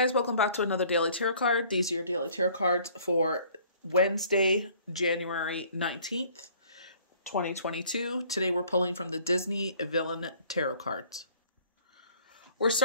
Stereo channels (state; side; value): inverted; both; correlation -0.55